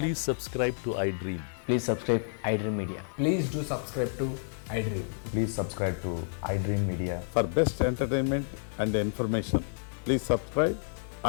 subscribe to iDream. Please subscribe iDream Media. Please do subscribe to iDream. Please subscribe to iDream Media. For best entertainment and information, please subscribe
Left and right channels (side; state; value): right; silent; digital silence